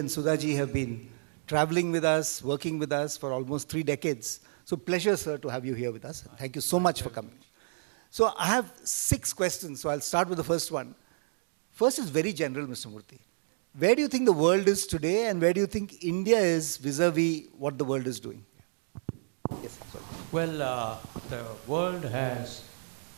Sudhaji have been traveling with us, working with us for almost 3 decades. So pleasure, sir, to have you here with us. Thank you so much for coming. So I have 6 questions, so I'll start with the first one. First is very general, Mr. Murthy. Where do you think the world is today, and where do you think India is vis-a-vis what the world is doing? Yes, sorry. Well, the world has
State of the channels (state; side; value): silent; left; digital silence